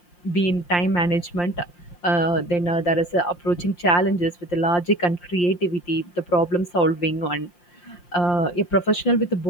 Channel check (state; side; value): late; right; 5.7 ms